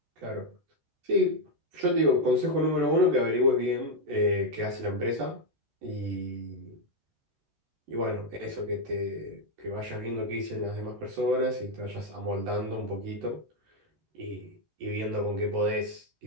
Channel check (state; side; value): late; left; 14 ms